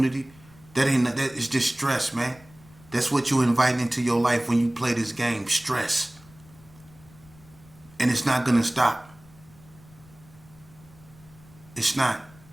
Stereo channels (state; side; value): noise; left; rumble, 25 dB below the sound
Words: That is just stress, man. That's what you invite into your life when you play this game, stress. And it's not gonna stop. It's not.